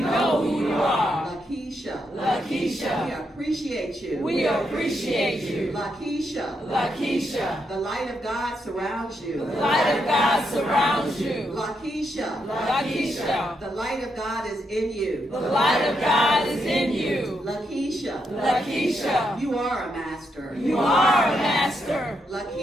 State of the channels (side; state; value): both; normal; correlation 0.80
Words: who you are. Lakeisha. Lakeisha. We appreciate you. We appreciate you. Lakeisha. Lakeisha. The light of God surrounds you. The light of God surrounds you. Lakeisha. Lakeisha. The light of God is in you. The light of God is in you. Lakeisha. Lakeisha. You are a master. You are a master.